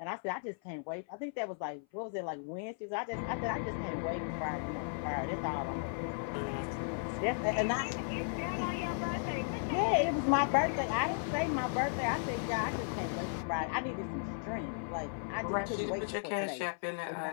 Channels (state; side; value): silent; right; 54 dB below the other